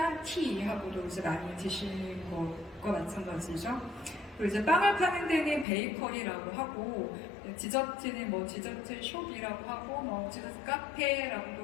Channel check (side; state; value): right; drops out; at 5.7 s